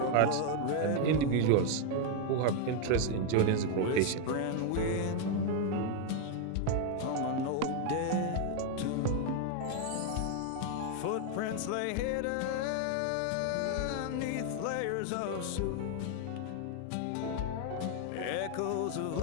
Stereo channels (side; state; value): both; different; correlation 0.00